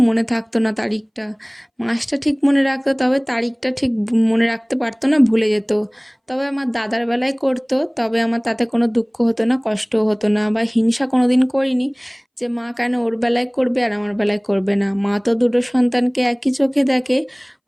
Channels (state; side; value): identical; both; correlation 1.00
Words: মনে থাকতো না তারিখটা। মাসটা ঠিক মনে রাখতো, তবে তারিখটা ঠিক মনে রাখতে পারতো না, ভুলে যেত। তবে আমার দাদার বেলায় করতো, তবে আমার তাতে কোনো দুঃখ হতো না, কষ্টও হতো না, বা হিংসা কোনো দিন করিনি যে মা কেন ওর বেলায় করবে আর আমার বেলায় করবে না। মা তো দুটো সন্তানকে একই চোখে দেখে,